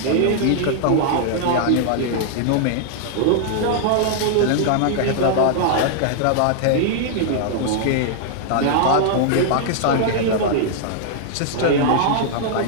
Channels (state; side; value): different; both; correlation -0.01